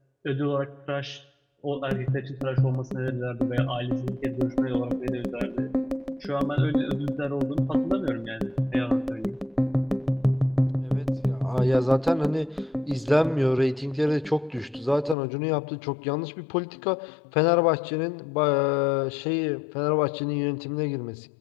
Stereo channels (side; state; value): right; drops out; at 15.2 s